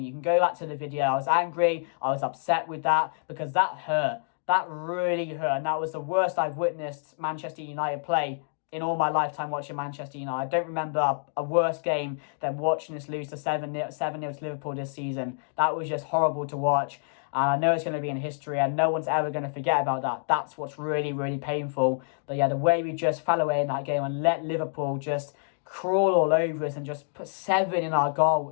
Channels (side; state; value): right; silent; digital silence